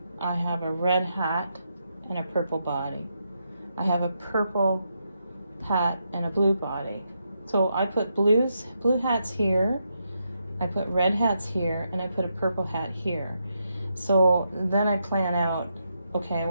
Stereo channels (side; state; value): both; inverted; correlation -0.82